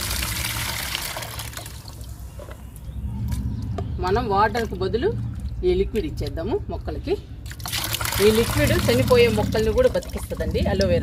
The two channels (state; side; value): identical; both; correlation 1.00